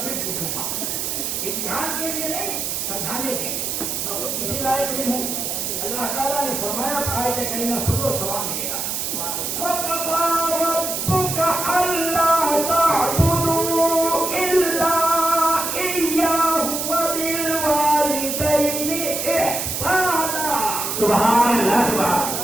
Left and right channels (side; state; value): right; noise; hiss, 2 dB below the sound